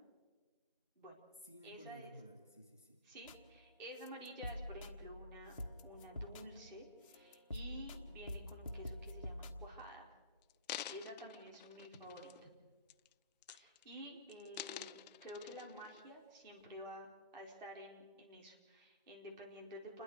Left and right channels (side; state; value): both; inverted; correlation -0.42